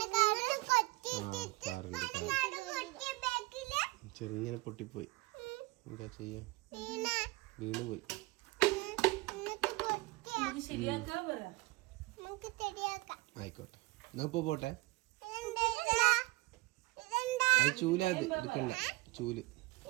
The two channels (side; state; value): left; quieter; 22.9 dB